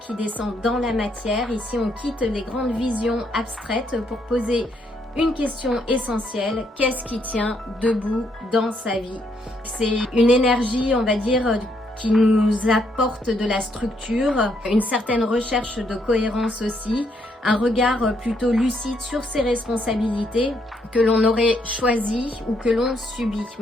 descend dans la matière. Ici, on quitte les grandes visions abstraites pour poser une question essentielle: qu'est-ce qui tient debout dans sa vie? C'est une énergie, on va dire, qui nous apporte de la structure, une certaine recherche de cohérence aussi, un regard plutôt lucide sur ses responsabilités que l'on aurait choisi ou que l'on subit.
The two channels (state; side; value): normal; both; correlation 0.74